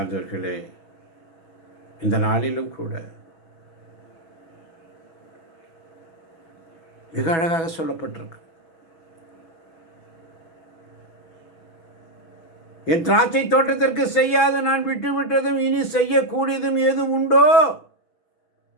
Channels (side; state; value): right; late; 6.1 ms